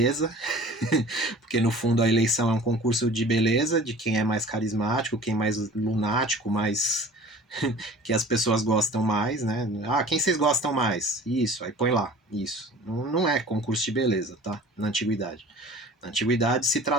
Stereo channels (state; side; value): normal; both; correlation 0.44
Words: porque no fundo a eleição é um concurso de beleza, de quem é mais carismático, quem é mais lunático, mais que as pessoas gostam mais, né? Ah, quem vocês gostam mais? Isso, aí põe lá, isso. Não é concurso de beleza, tá? Na antiguidade. Na antiguidade se